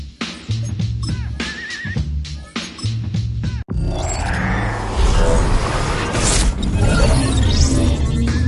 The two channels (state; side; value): identical; both; correlation 1.00